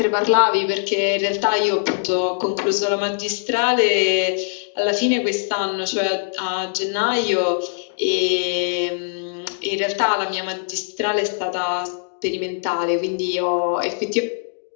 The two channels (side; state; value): right; silent; digital silence